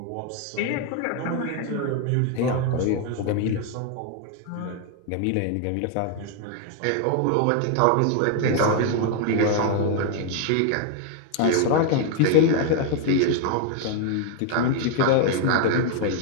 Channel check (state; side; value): different; both; correlation 0.00